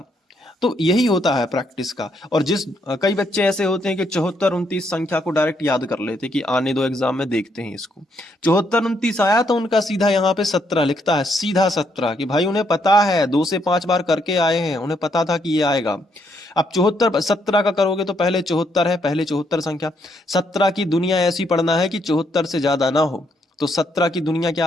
तो यही होता है प्रैक्टिस का। और कई बच्चे ऐसे होते हैं कि 7429 संख्या को डायरेक्ट याद कर लेते कि आने दो एग्जाम में देखते हैं इसको। 7429 आया तो उनका सीधा यहाँ पे 17 लिखता है, सीधा 17, कि भाई उन्हें पता है, 2 से 5 बार करके आए हैं, उन्हें पता था कि ये आएगा। अब 74 17 का करोगे तो पहले 74 है, पहले 74 संख्या, 17 की दुनिया ऐसी पढ़ना है कि 74 से ज्यादा ना हो। तो 17 की दुनिया क्या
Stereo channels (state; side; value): normal; both; correlation 0.74